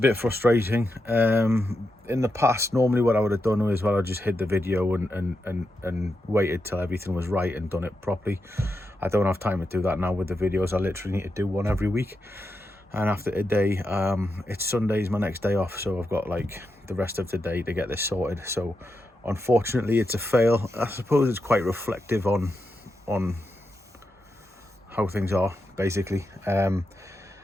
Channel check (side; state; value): both; normal; correlation 0.86